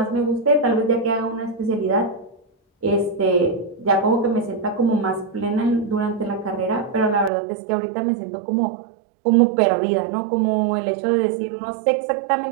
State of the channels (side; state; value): left; drops out; at 7.3 s